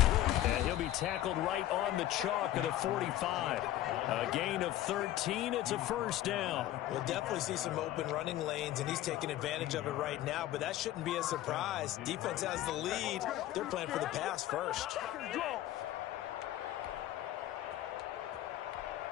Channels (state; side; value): quieter; right; 13.9 dB